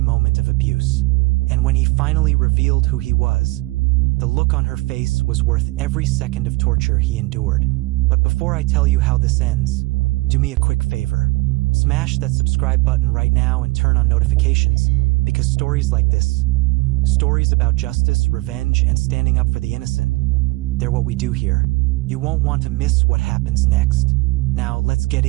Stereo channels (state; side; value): quieter; left; 23.2 dB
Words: moment of abuse. And when he finally revealed who he was, the look on her face was worth every second of torture he endured. But before I tell you how this ends, do me a quick favor. Smash that subscribe button right now and turn on notifications, because stories like this, stories about justice, revenge, and standing up for the innocent, they're what we do here. You won't want to miss what happens next. Now, let's get